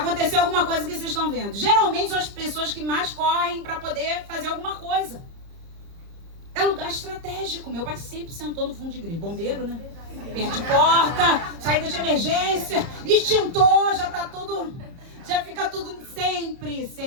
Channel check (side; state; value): left; late; 30 ms